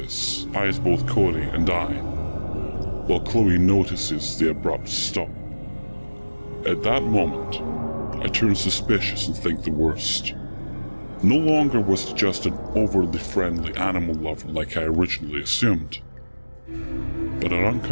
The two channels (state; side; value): inverted; both; correlation -1.00